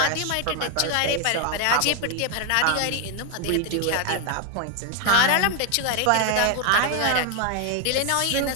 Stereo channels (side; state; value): both; different; correlation 0.01